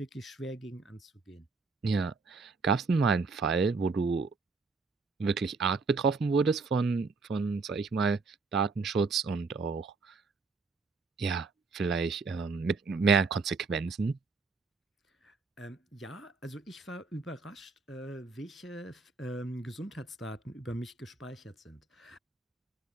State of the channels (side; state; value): left; quieter; 4.4 dB